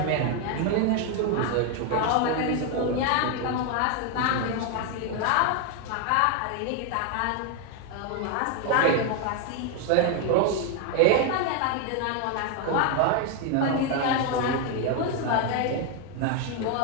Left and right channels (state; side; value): different; both; correlation 0.01